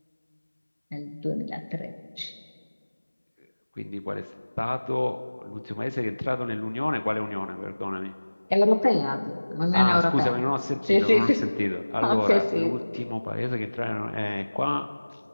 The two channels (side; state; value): both; inverted; correlation -1.00